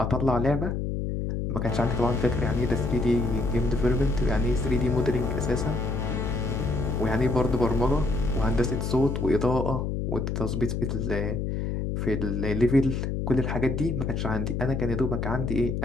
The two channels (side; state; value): left; noise; hum, 1 dB below the sound